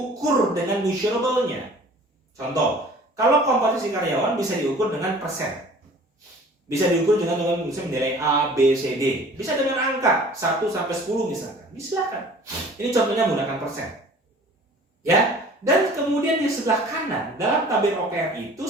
dengan measurable-nya. Contoh, kalau kompetensi karyawan bisa diukur dengan persen. Bisa diukur dengan misalnya nilai A, B, C, D. Bisa dengan angka 1 sampai 10 misalkan. Silakan. Ini contohnya menggunakan persen. Ya. Dan kemudian di sebelah kanan, dalam tabel OKR itu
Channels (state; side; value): normal; both; correlation 0.48